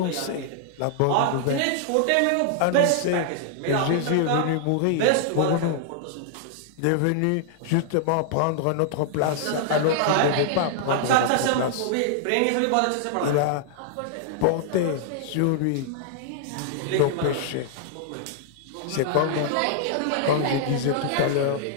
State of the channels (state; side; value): different; both; correlation -0.01